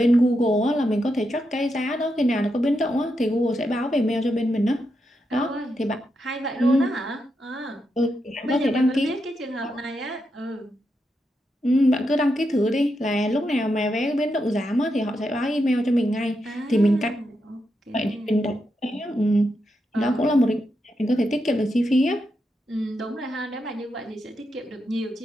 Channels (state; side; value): normal; both; correlation 0.84